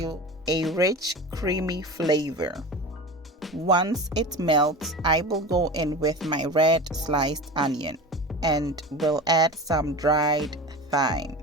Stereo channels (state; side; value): normal; both; correlation 0.31